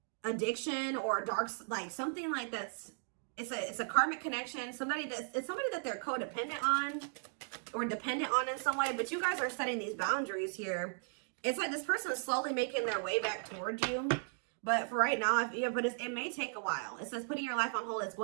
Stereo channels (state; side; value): silent; left; 53 dB below the other